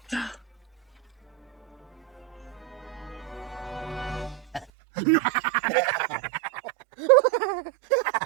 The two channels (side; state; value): left; drops out; at 4.7 s